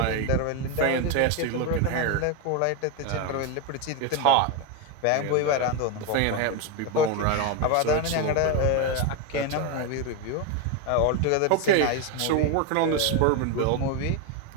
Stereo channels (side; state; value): both; different; correlation 0.02